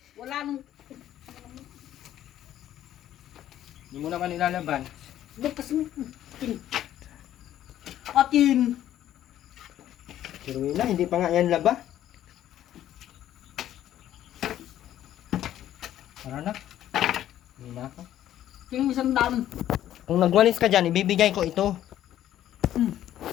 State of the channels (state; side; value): quieter; right; 12.1 dB